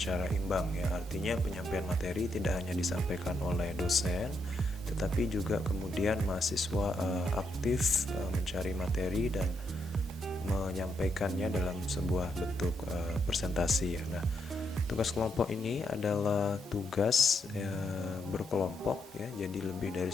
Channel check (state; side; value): normal; both; correlation 0.79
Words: imbang ya. Artinya penyampaian materi tidak hanya disampaikan oleh dosen, tetapi juga kemudian mahasiswa aktif mencari materi dan menyampaikannya dalam sebuah bentuk presentasi ya. Nah, tugas kelompok ini adalah tugas berkelompok ya, jadi lebih dari